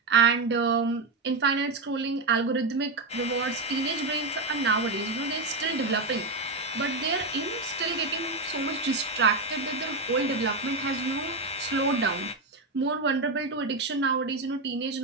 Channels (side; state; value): left; quieter; 3.3 dB